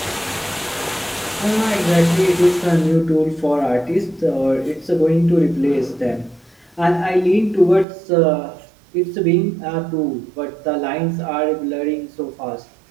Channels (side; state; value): left; drops out; at 7.9 s